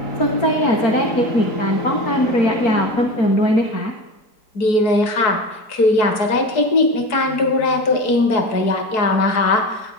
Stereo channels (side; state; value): right; late; 4.7 ms